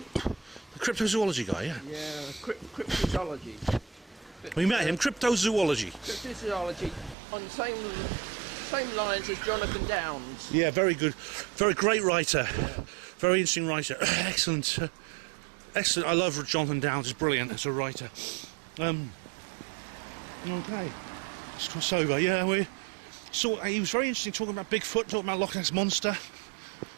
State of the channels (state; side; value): drops out; left; at 7.2 s